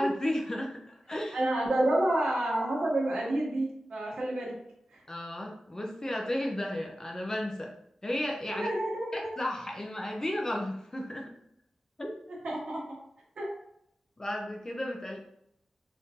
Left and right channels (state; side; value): normal; both; correlation 0.93